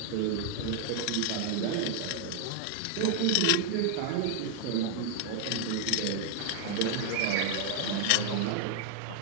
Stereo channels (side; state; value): both; different; correlation 0.00